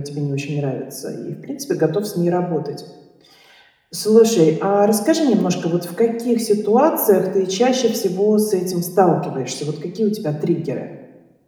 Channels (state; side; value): identical; both; correlation 1.00